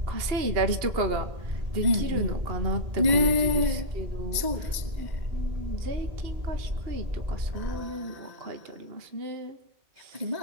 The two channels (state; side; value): late; left; 2.0 ms